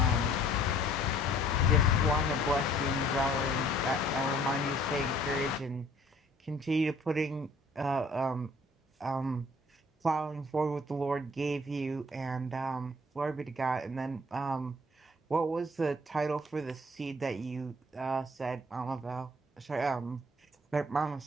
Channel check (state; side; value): normal; both; correlation 0.57